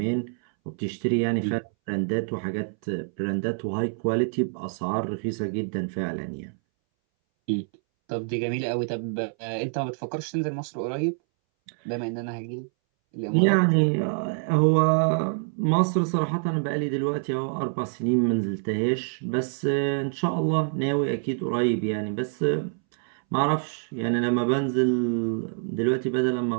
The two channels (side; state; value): left; silent; 61 dB below the other